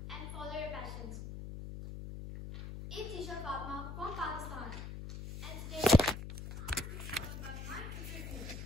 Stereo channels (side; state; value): left; noise; hum, 7 dB below the sound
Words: and follow your passions. It's Isha Fatma from Pakistan, and today I'm about my future dreams.